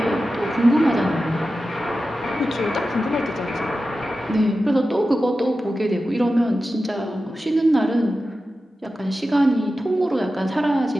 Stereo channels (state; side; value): normal; both; correlation 0.93